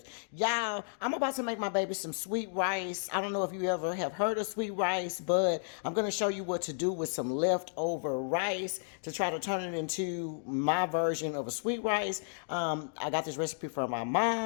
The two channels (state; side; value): silent; right; digital silence